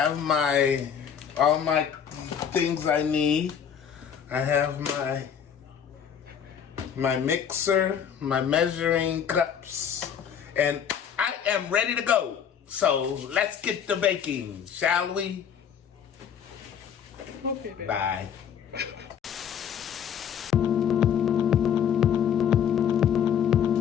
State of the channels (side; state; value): right; quieter; 8.2 dB